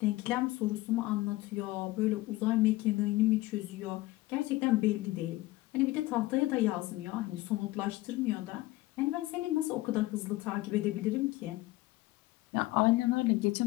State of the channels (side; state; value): right; quieter; 18.9 dB